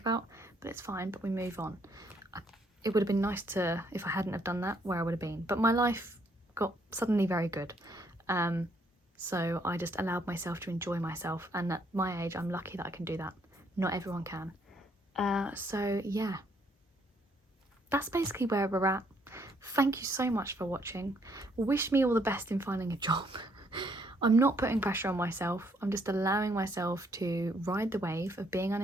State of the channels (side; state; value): both; normal; correlation 0.69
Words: but it's fine, but we move on. It would have been nice to, if I hadn't have done that, where I would have been, but my life got suddenly very good, so I just allowed myself to enjoy myself, and at my age I'm lucky that I can do that. Not everyone can. So yeah, that's basically where we're at. Thank you so much for watching. Wish me all the best in finding a job. I'm not putting pressure on myself. I'm just allowing myself to ride the wave of being